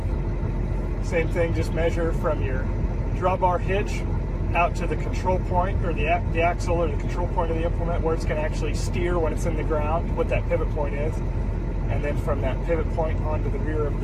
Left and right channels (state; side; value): identical; both; correlation 1.00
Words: Same thing, just measure from your drawbar hitch out to the control point, or the axle or the control point of the implement, where it's going to actually steer when it's in the ground, what that pivot point is. And then from that pivot point onto the rear of